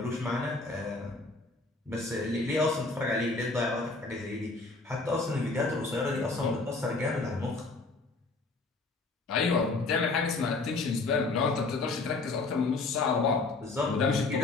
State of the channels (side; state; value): right; quieter; 3.6 dB